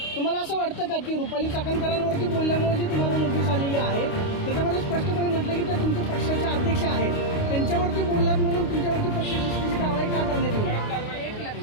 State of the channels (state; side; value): late; right; 29 ms